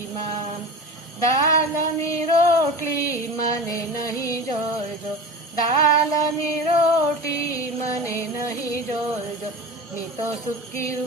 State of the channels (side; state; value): both; normal; correlation 0.31